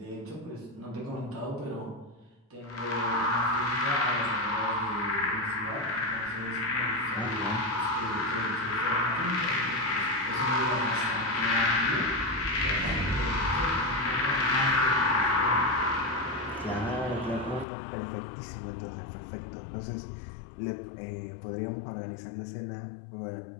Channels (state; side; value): drops out; right; at 17.7 s